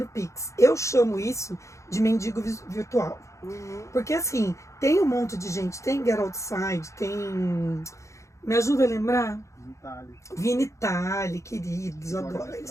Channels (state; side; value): late; right; 0.15 ms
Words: pix. Eu chamo isso de mendigo virtual. Porque assim, tem um monte de gente, tem Get Outside, tem... Me ajuda a lembrar? Vinitali, queridos, adoro